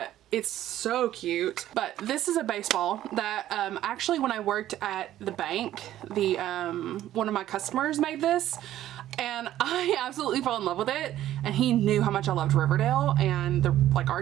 it's so cute. But this is a baseball that actually when I worked at the bank, one of my customers made this, and I absolutely fell in love with it, and he knew how much I loved Riverdale and the like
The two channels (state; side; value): quieter; left; 12.9 dB